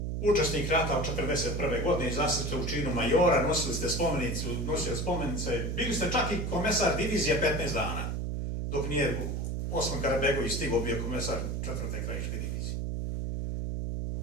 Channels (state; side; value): noise; right; hum, 2 dB below the sound